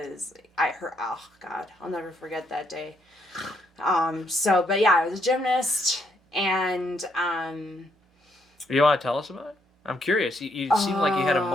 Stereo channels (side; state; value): both; normal; correlation 0.73